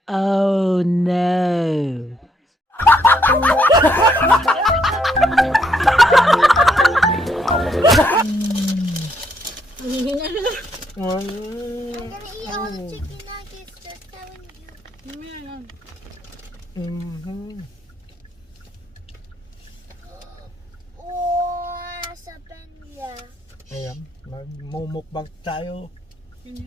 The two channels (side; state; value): both; normal; correlation 0.73